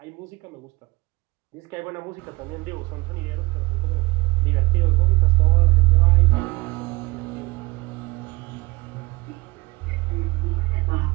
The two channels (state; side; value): quieter; left; 23.8 dB